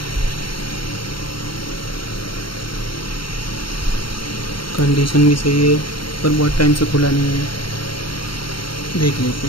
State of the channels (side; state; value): right; late; 0.73 ms